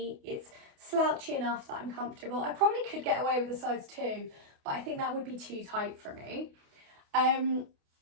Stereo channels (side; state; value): left; late; 28 ms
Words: It's slouchy enough that I'm comfortable. I probably could get away with a size 2, but I think that would be too tight for me.